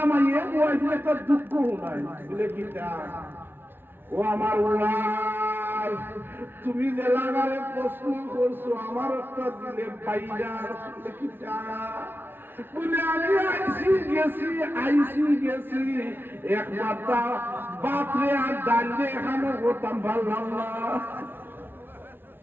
ওয়াইফ একটা দুঃখ নাই বলে কিতা ও আমার ওয়াইফ তুমি যে লাগারে প্রশ্ন করছো আমার একটা দিলে পাইয়া কিতা বলে আমি আইসি গেছি একবার বাপরে আর ডালে এখানে হতাম ভালো না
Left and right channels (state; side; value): late; left; 0.10 ms